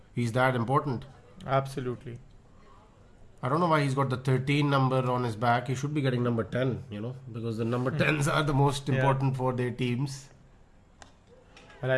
He's that important. Absolutely. I don't know why he's got the 13 number on his back. He should be getting number 10, because the number 10s are the most important for their teams. Well,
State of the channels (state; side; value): identical; both; correlation 1.00